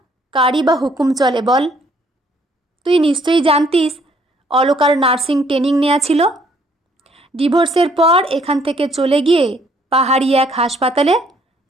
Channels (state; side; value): normal; both; correlation 0.65